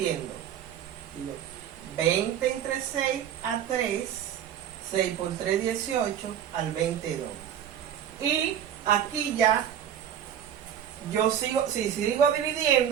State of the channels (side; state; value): left; quieter; 9.6 dB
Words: Digo 20 entre 6 a 3. 6 por 3, 18 al 22. Y aquí ya, yo sigo, si sigo